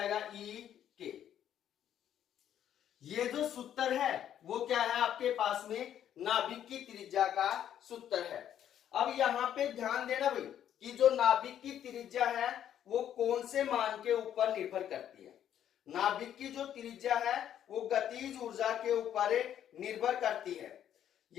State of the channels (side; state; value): right; quieter; 10.3 dB